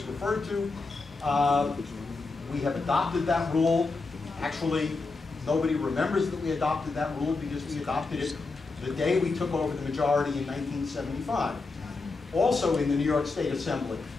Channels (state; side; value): quieter; right; 3.8 dB